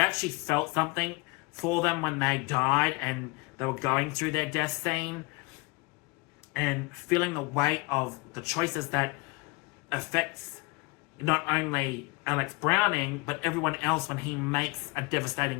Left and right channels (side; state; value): right; quieter; 26.3 dB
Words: actually felt something for them when they died and they were going through their death scene, and feeling the weight of the choices that affects not only Alex Browning, but everyone else when he makes a